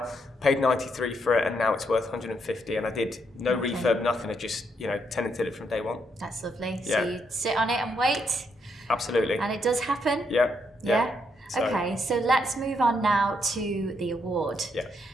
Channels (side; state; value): both; normal; correlation 0.77